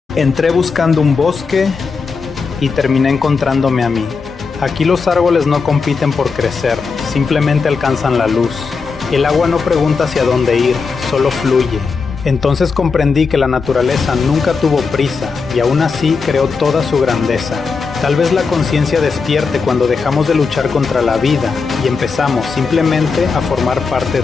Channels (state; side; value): quieter; right; 4.9 dB